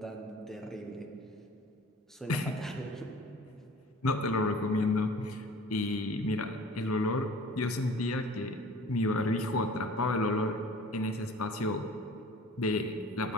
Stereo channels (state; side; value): normal; both; correlation 0.45